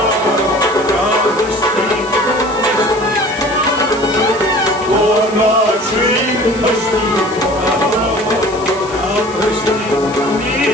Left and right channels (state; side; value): noise; left; hiss, 17 dB below the sound